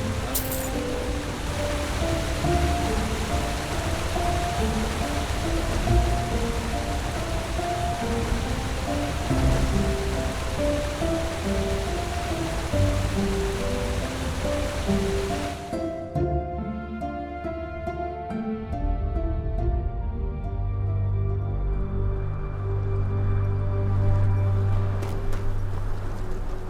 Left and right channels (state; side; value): identical; both; correlation 1.00